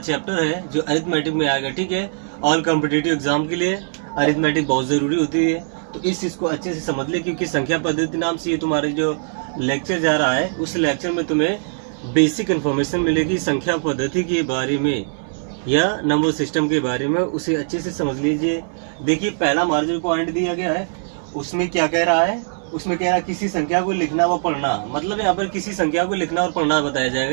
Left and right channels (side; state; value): left; silent; 61 dB below the other